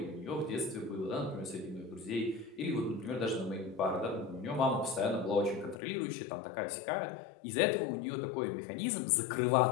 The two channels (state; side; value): drops out; right; at 5.8 s